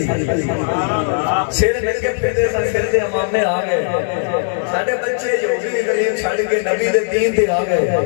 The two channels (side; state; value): right; silent; 60 dB below the other